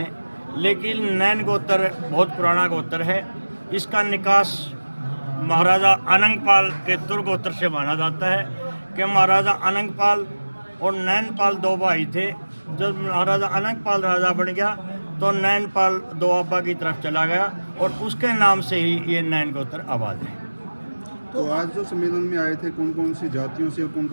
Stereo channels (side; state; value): both; inverted; correlation -1.00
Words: लेकिन नैन गोत्र बहुत पुराना गोत्र है। इसका निकास महाराजा अनंगपाल के दुर्गोत्र से माना जाता है कि महाराजा अनंगपाल और नैनपाल 2 भाई थे। जब महाराजा अनंगपाल राजा बन गया तो नैनपाल दोआबा की तरफ चला गया और उसके नाम से ही ये नैन गोत्र आबाद है। तो आज जो सम्मेलन में आए थे, कौन कौन सी जातियों से और कौन